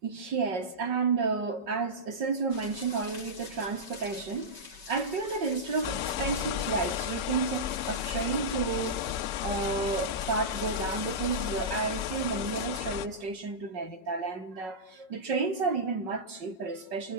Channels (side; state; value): left; late; 5.4 ms